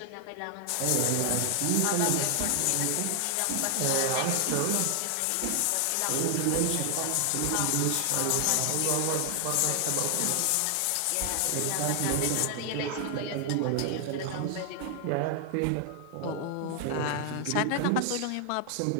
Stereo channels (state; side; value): different; both; correlation 0.00